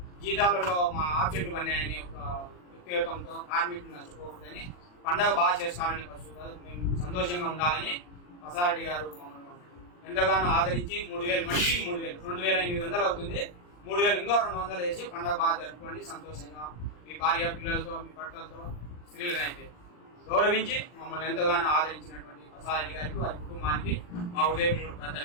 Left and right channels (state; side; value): late; right; 40 ms